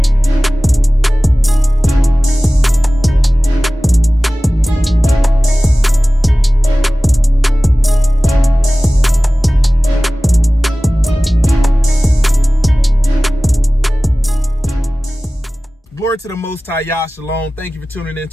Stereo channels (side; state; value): both; normal; correlation 0.97